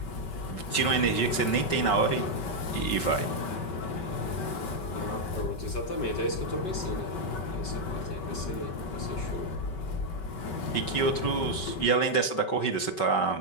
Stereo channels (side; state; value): right; late; 5.3 ms